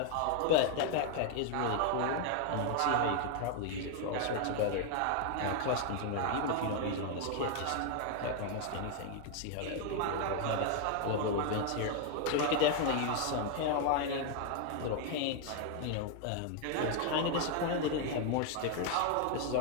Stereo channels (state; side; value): different; both; correlation 0.00